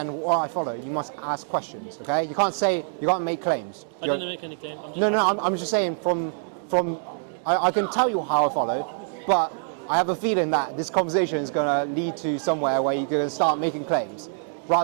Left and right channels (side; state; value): left; silent; digital silence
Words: what I follow, you must ask questions. Okay? You can't make claims. I didn't make any claims. I'm just asking. I'm just saying from I can tell you how I follow, but I have a feeling that this conversation is going to lead to somewhere where you're going to start making claims